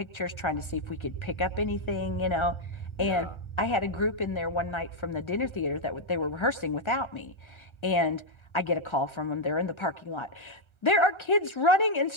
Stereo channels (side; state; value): right; late; 1.3 ms